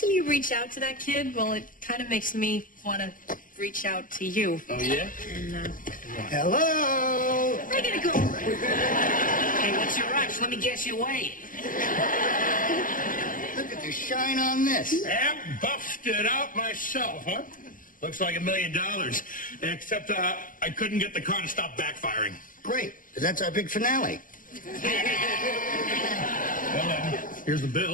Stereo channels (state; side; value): late; right; 0.39 ms